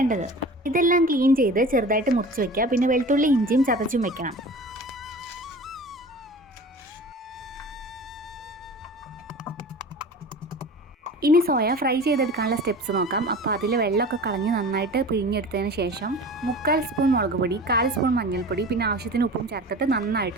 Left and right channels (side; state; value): both; normal; correlation 0.38